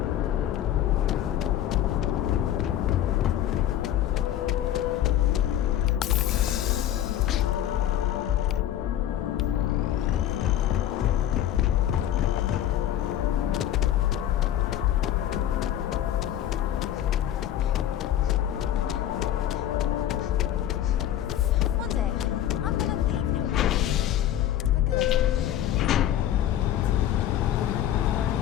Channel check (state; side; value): quieter; right; 11.7 dB